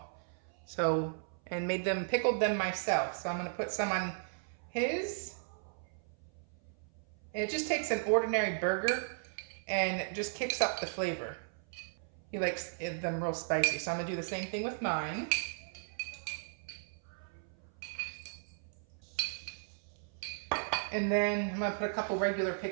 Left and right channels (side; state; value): left; silent; 54 dB below the other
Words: So, and pickled them myself. So I'm gonna put some on his. And it just takes an ordinary burger and just kicks up the flavor. He likes them real spicy, so I'm gonna do the same thing with mine. And then I'm gonna put a couple regular